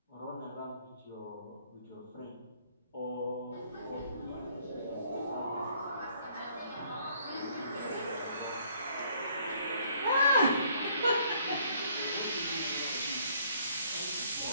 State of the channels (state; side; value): inverted; both; correlation -0.63